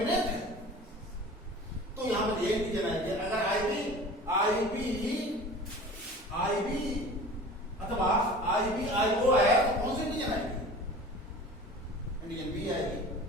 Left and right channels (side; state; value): both; normal; correlation 0.40